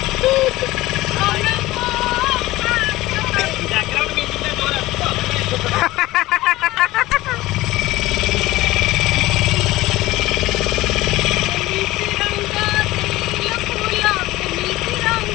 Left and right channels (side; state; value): right; quieter; 17.9 dB